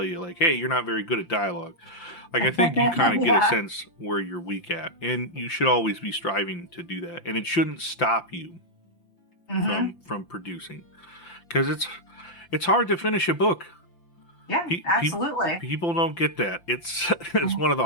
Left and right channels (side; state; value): right; late; 5.8 ms